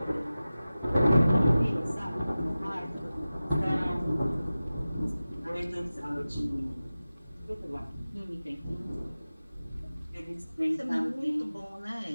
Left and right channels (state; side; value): inverted; both; correlation -0.96